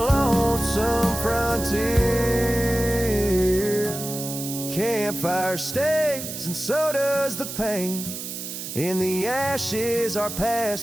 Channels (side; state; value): right; noise; hiss, 8 dB below the sound